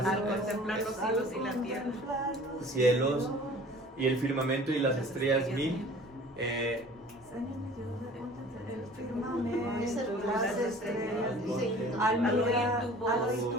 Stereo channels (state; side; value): normal; both; correlation 0.47